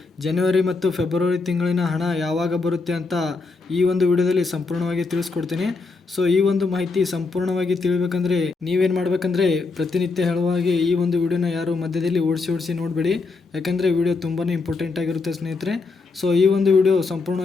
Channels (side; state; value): right; quieter; 4.1 dB